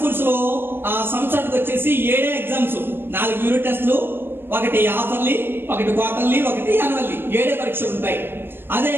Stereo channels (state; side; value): late; left; 0.10 ms